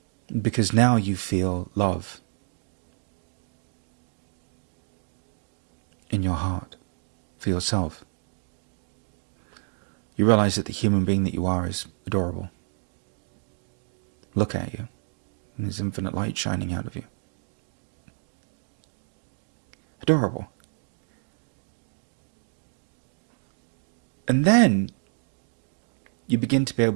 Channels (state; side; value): silent; left; 59 dB below the other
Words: Because now you feel love in your heart for yourself. You realize that the human being that you are is adorable. Look at you. And there's infinite light shining out of you. Adorable. And then you begin to be